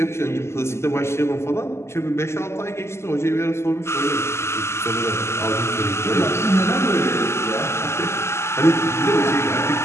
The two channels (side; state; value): right; late; 0.13 ms